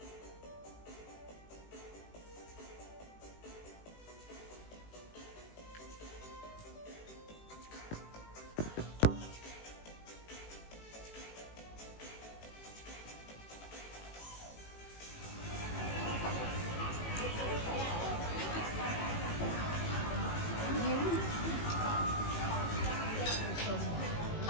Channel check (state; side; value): late; right; 18 ms